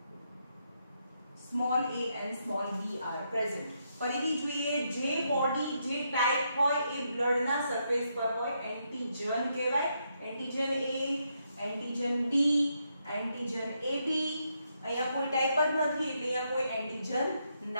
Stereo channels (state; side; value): inverted; both; correlation -0.79